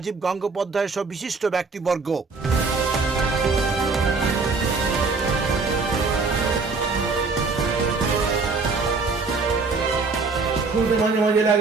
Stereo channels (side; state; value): left; quieter; 4.2 dB